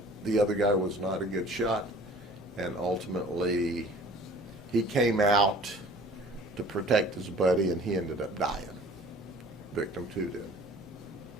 the other guy was not a good shot, and ultimately he came out to protect his buddy, and he ended up dying. Victim 2 did.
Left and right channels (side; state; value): both; normal; correlation 0.49